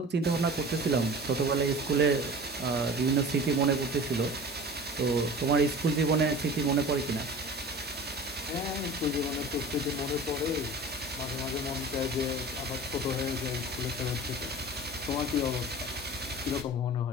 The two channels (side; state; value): both; normal; correlation 0.38